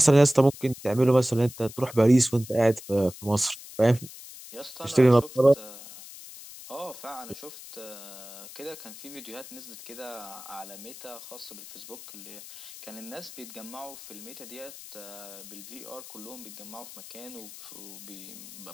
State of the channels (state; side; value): noise; left; hiss, 15 dB below the sound